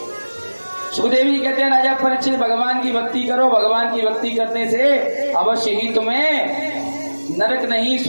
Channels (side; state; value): both; inverted; correlation -1.00